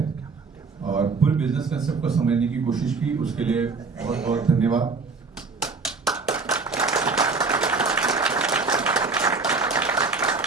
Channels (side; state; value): left; quieter; 4.4 dB